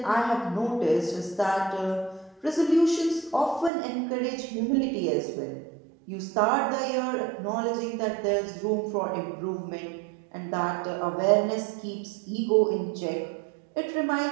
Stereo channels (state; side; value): drops out; left; at 3.7 s